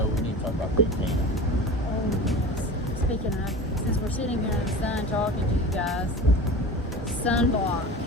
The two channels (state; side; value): normal; both; correlation 0.33